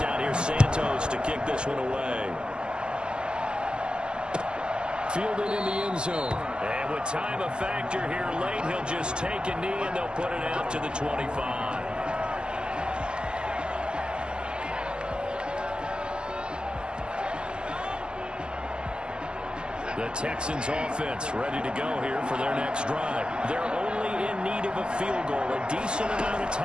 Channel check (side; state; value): left; late; 0.048 ms